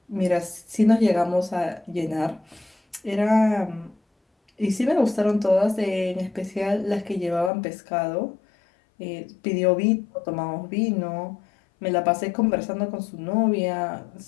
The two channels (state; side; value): drops out; right; at 7.5 s